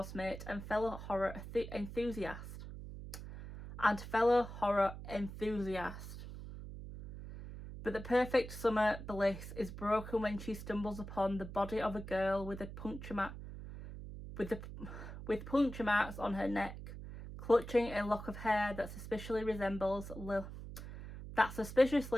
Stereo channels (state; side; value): noise; right; hum, 11 dB below the sound